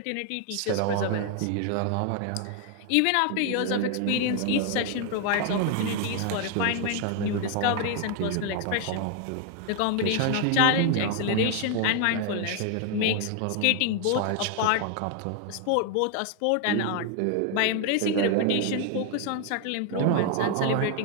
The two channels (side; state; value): both; different; correlation 0.00